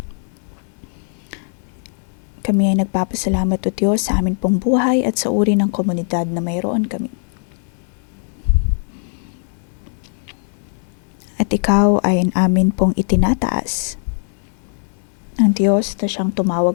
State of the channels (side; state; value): right; silent; digital silence